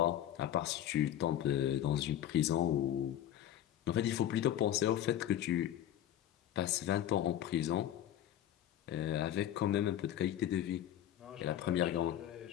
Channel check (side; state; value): right; quieter; 11.5 dB